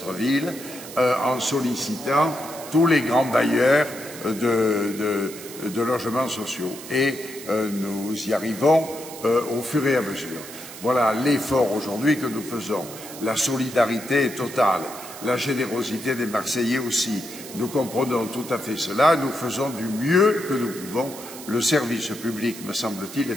en sollicitant tous les grands bailleurs de logements sociaux. Et nous y arrivons au fur et à mesure. Voilà l'effort aujourd'hui que nous faisons. La solidarité est totale, la générosité des Marseillais aussi. Nous comprenons tout à fait cela, nous faisons du mieux que nous pouvons. Le service public, me semble-t-il,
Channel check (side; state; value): right; noise; hiss, 14 dB below the sound